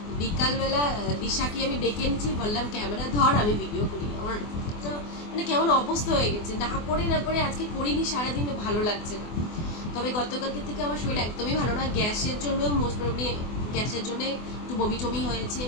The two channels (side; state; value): right; late; 24 ms